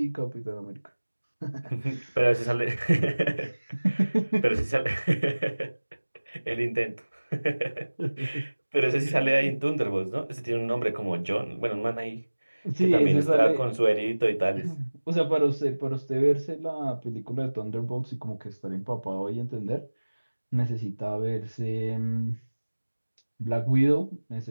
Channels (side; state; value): both; inverted; correlation -1.00